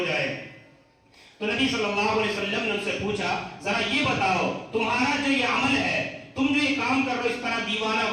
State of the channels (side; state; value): both; identical; correlation 1.00